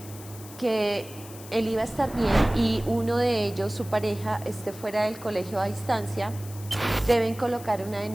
que él iba a estar bien y uno de ellos, su pareja, esté fuera del colegio a distancia, deben colocar una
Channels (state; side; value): noise; left; hiss, 17 dB below the sound